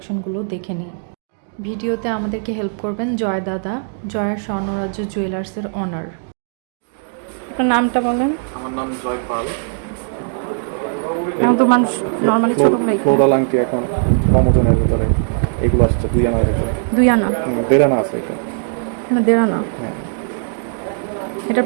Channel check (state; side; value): silent; left; 67 dB below the other